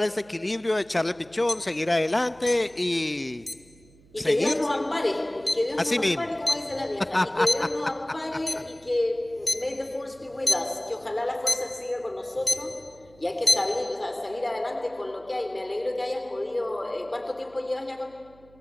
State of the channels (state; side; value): noise; right; hum, 27 dB below the sound